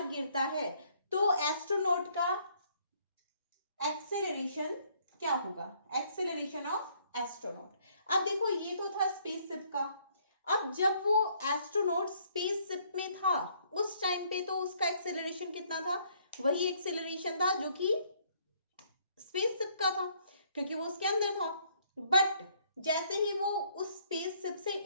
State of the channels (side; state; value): both; inverted; correlation -0.65